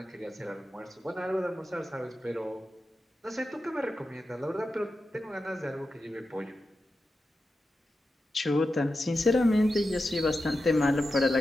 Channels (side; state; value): both; normal; correlation 0.90